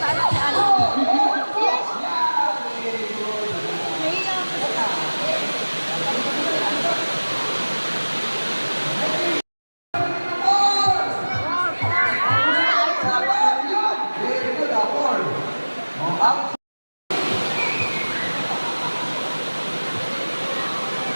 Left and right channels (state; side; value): inverted; both; correlation -1.00